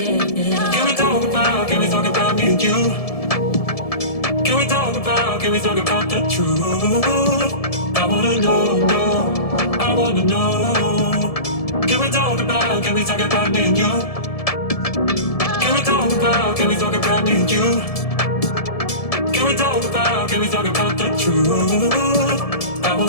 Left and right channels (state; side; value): late; right; 1.7 ms